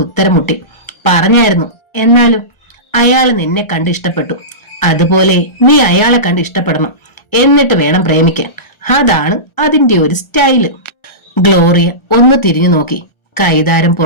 ഉത്തരം മുട്ടി. പറഞ്ഞായിരുന്നു. എന്നാലും അയാൾ നിന്നെ കണ്ട് ഇഷ്ടപ്പെട്ടു. അതുപോലെ നീ അയാളെ കണ്ട് ഇഷ്ടപ്പെടണം. എന്നിട്ട് വേണം പ്രേമിക്കാൻ. അതാണ് അതിന്റെ ഒരു സ്റ്റൈല്. ഗ്ലോറിയ ഒന്ന് തിരിഞ്ഞു നോക്കി. കൈതാരം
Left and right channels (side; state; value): right; late; 1.4 ms